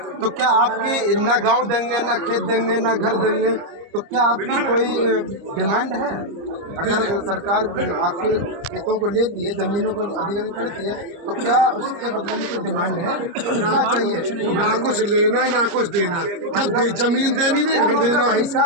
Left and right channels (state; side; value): late; left; 30 ms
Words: तो क्या आपके ना गांव देंगे, ना खेत देंगे, ना घर देंगे, तो क्या आपकी कोई डिमांड है? अगर सरकार आपके खेतों को लेती है, जमीनों को अधिग्रहण करती है, तो क्या उसके बदले में कोई डिमांड है? कितना चाहिए? ना कुछ लेना ना कुछ देना। जब जमीन देनी नहीं, घर देना,